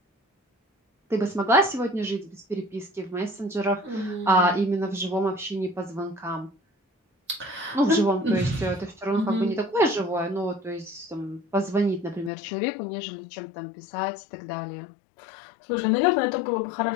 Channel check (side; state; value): right; drops out; at 12.3 s